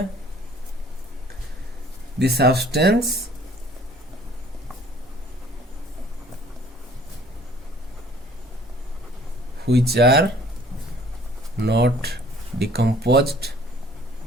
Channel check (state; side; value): normal; both; correlation 0.55